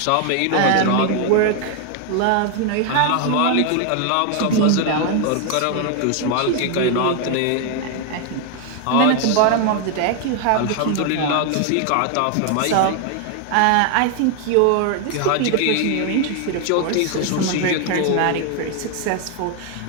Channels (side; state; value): both; different; correlation 0.01